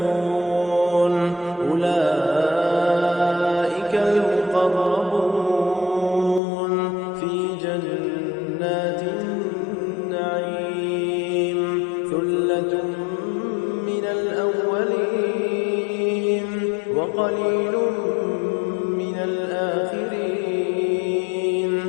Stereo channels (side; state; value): right; drops out; at 6.4 s